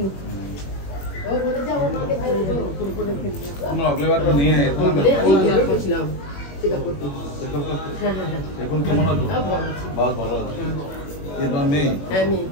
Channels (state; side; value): late; right; 21 ms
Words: ও বলে যাও আমাকে ভাই আমরা আগলে বার তো নিয়ে তো আমি গেছিলাম চেকআপ করতে এখন কেমন আছো বহুত ভালো আছি এবার মেয়ে হ্যাঁ মেয়ে